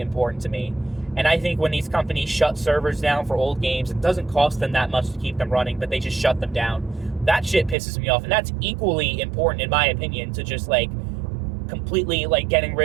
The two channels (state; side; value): drops out; left; at 7.8 s